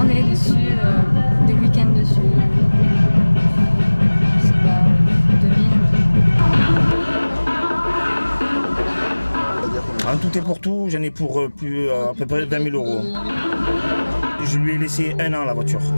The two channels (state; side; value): inverted; both; correlation -1.00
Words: dessus, des week-ends dessus. Je sais pas, 2000. En tout et pour tout, j'en ai pour à peu près 20 000 euros. Je lui ai laissé 1 an la voiture.